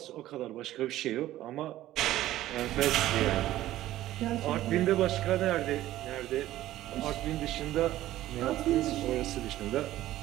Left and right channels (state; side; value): quieter; left; 14.5 dB